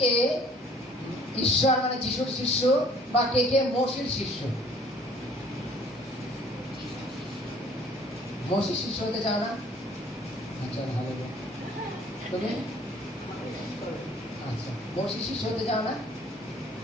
কে ঈশ্বর মানে যিশুর শিষ্য বা কে কে মসির শিষ্য? মসির শিষ্য হতে চাও না? আচ্ছা, হালেলুয়া। তুমি আচ্ছা, মসির শিষ্য হতে চাও না?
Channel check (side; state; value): both; normal; correlation 0.55